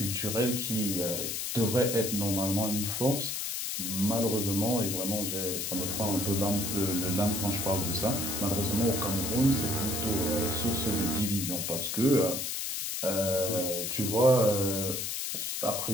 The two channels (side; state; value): left; noise; hiss, 2 dB below the sound